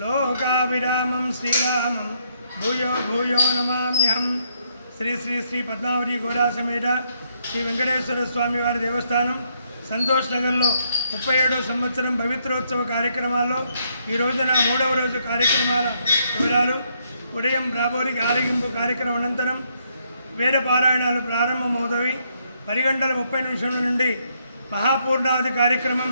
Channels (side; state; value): both; inverted; correlation -0.74